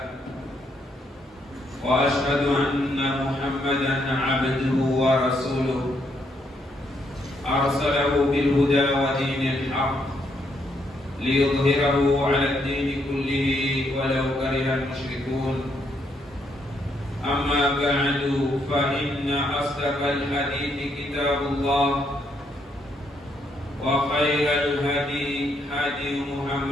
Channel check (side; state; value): both; normal; correlation 0.75